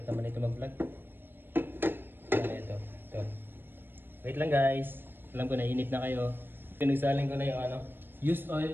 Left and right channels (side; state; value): left; late; 0.098 ms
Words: naman ito mag-vlog. Ito. Wait lang guys. Alam ko na init na kayo. Pinagsaling ko na yung ano, used oil